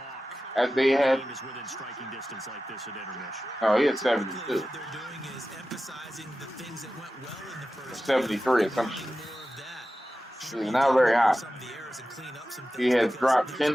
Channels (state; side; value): normal; both; correlation 0.94